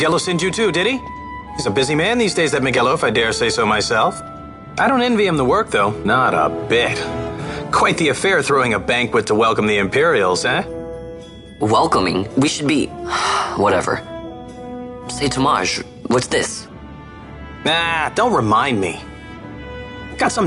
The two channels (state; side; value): identical; both; correlation 1.00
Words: sent you too, did he? He's a busy man these days, that Miguelo, if I dare say so myself. I don't envy him the work, though. Not a bit. Quite the affair throwing a banquet to welcome the Imperials, eh? Welcoming? We should be... whatever. Say, Tomaj, what's this? Nah, don't remind me. Got